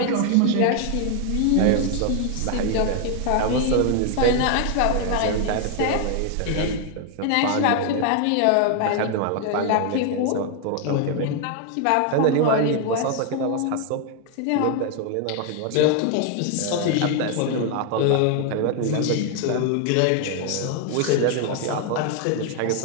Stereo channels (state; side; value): different; both; correlation 0.00